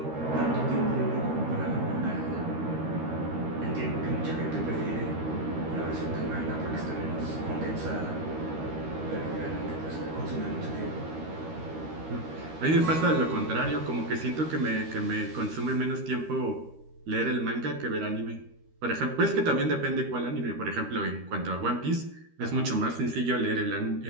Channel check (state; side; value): late; left; 13 ms